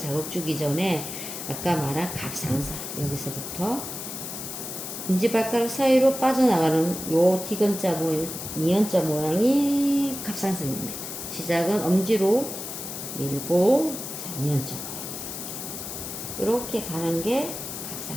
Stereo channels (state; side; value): noise; left; hiss, 7 dB below the sound